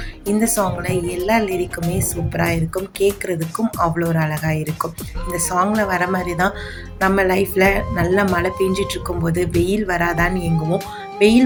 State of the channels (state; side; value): identical; both; correlation 1.00